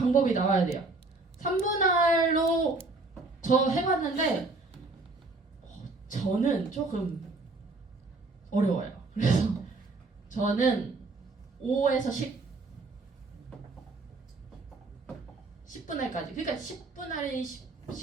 나와야 돼요. 3분할로 저 해봤는데 저는 조금 어려워요. 그래서 저는 5에서 10분할까지. 그러니까 10분할이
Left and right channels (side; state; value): left; quieter; 3.4 dB